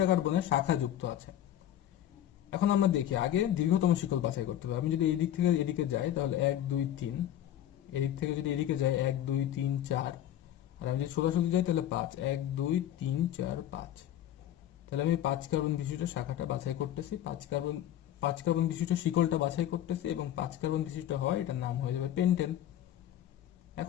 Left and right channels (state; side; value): quieter; right; 11.7 dB